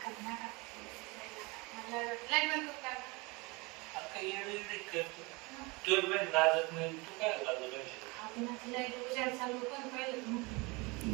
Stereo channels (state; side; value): quieter; left; 26.4 dB